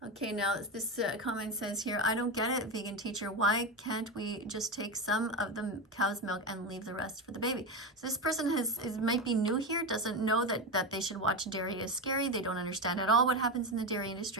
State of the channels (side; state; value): both; normal; correlation 0.16